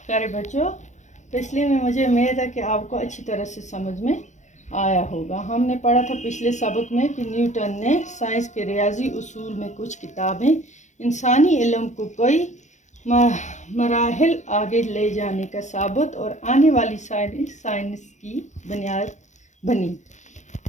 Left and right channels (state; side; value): late; right; 0.34 ms